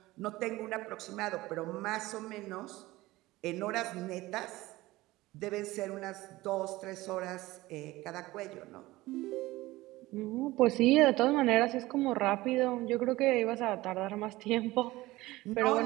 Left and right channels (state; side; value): quieter; left; 18.7 dB